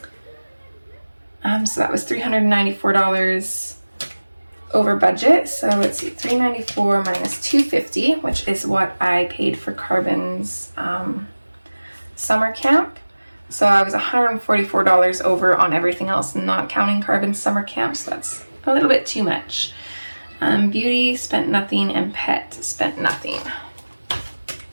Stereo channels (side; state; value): both; inverted; correlation -1.00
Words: So that was $394 over budget. So let's see, $394 minus $250, which is what I paid for Carbon's summer camp, So I was $144 over on everything else, not counting Carbon summer camp, so that's a little bit too much. Beauty spent nothing, and pet spent nothing.